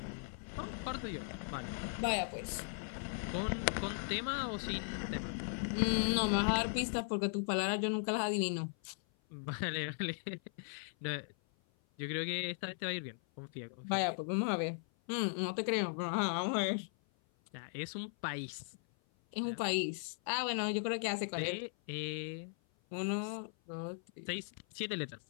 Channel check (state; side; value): silent; right; 52 dB below the other